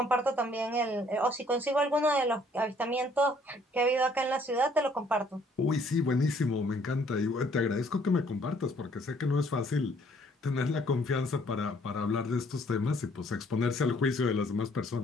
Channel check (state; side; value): normal; both; correlation 0.62